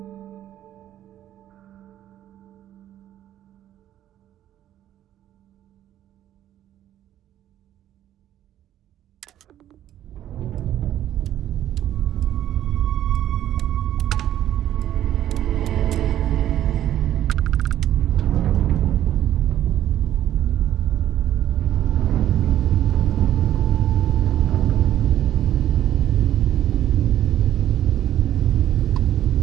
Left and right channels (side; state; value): left; quieter; 11.9 dB